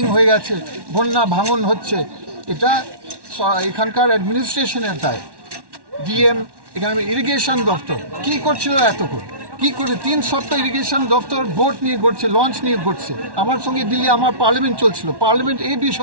হয়ে গেছে, বন্যা ভাঙন হচ্ছে, এটা এখানকার অ্যাডমিনিস্ট্রেশনের দায়। ডিএম, এখানে ইরিগেশন দপ্তর কি করছিল এতক্ষণ, কি করে 3 সপ্তাহ ইরিগেশন দপ্তর বোট নিয়ে ঘুরছে, লঞ্চ নিয়ে ঘুরছে। আমার সঙ্গে দিল্লি আমার পার্লামেন্ট চলছিল, পার্লামেন্ট এই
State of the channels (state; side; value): late; left; 1.1 ms